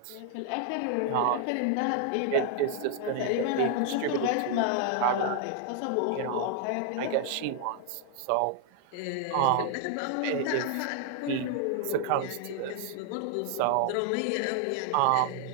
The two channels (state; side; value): different; both; correlation 0.00